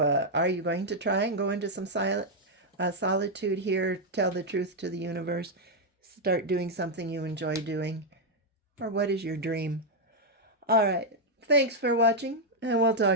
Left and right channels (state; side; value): normal; both; correlation -0.01